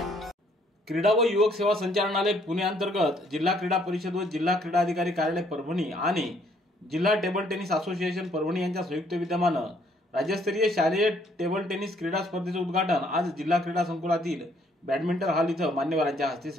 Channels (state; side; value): normal; both; correlation 0.66